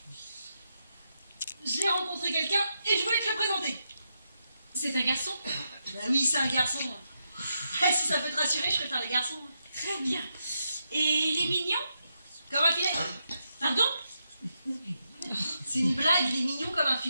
J'ai rencontré quelqu'un et je voulais te le présenter. C'est un garçon? Bah oui, c'est un garçon. Si ça peut te rassurer, je préfère les garçons. Très bien. Et il est mignon? Comme un filet. Pardon? C'est une blague, il est mignon comme un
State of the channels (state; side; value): inverted; both; correlation -0.83